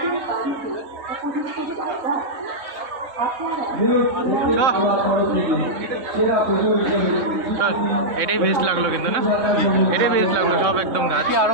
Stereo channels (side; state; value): left; late; 3.6 ms